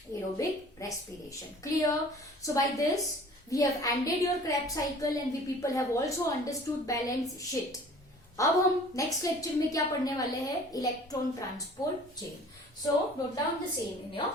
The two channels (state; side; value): normal; both; correlation 0.48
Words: aerobic respiration. Clear? So by this we have ended your Krebs cycle and we people have also understood balance sheet. अब हम next lecture में क्या पढ़ने वाले हैं? Electron transport chain. So note down the same in your